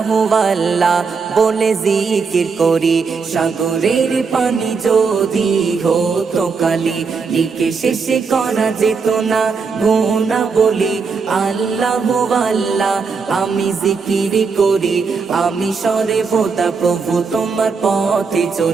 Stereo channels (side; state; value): left; quieter; 5.1 dB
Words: আল্লাহ বলে জিকির করি। সাগরের পানি যদি হতো কালি, লিখে শেষে করা যেত না গোনা বলি। আল্লাহ আল্লাহ আমি জিকির করি, আমি সরে বোদা প্রভু তোমার পথে